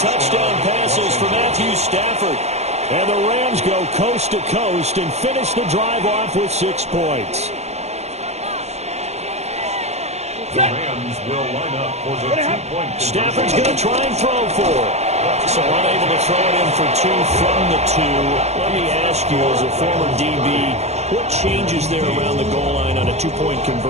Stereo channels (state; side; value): late; left; 0.32 ms